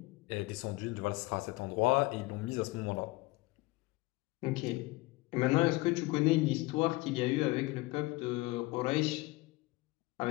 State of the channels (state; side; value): quieter; right; 21.7 dB